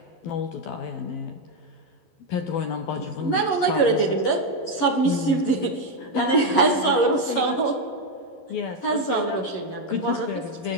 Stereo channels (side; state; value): right; late; 11 ms